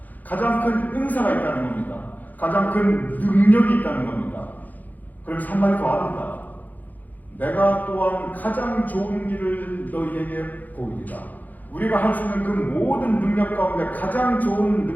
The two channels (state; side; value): late; right; 0.082 ms